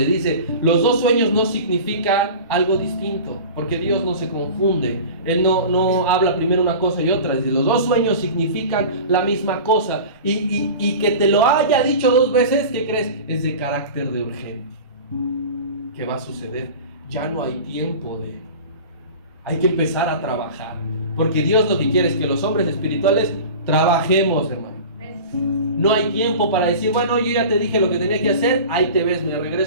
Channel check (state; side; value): inverted; both; correlation -0.36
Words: dice, los 2 sueños no significan algo distinto, porque Dios no se confunde. Él no habla primero una cosa y otra. Dice, los 2 sueños significan la misma cosa. Y que te lo haya dicho 2 veces, ¿qué crees? Es de carácter de urgente. ¿Qué va a suceder? Ya no hay tiempo hay que empezar a trabajar. Porque Dios lo que quiere es que los hombres espirituales trabajemos, hermano. No hay tiempo para decir, bueno, yo ya te dije lo que tenía que hacer, ahí te ves, me